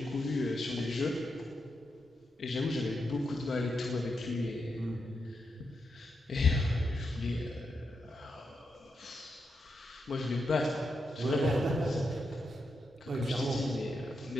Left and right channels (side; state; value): both; normal; correlation 0.85